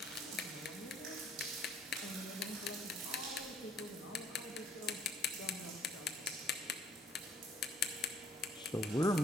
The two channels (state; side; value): normal; both; correlation 0.61